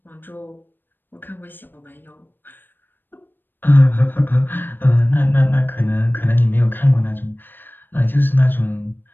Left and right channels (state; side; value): late; right; 0.095 ms